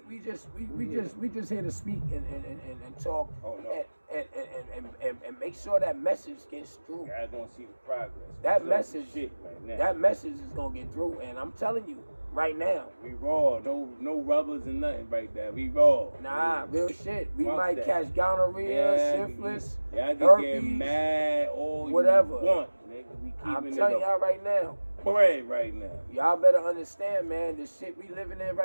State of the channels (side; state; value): both; inverted; correlation -1.00